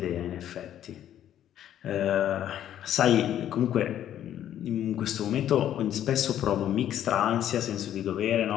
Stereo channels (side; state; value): right; quieter; 11.0 dB